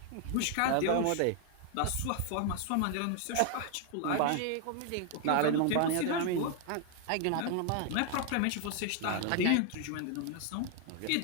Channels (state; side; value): different; both; correlation 0.00